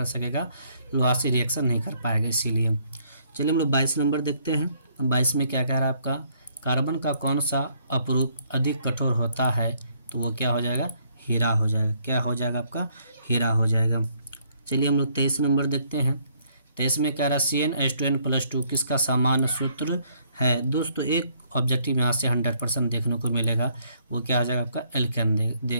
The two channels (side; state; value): both; inverted; correlation -0.67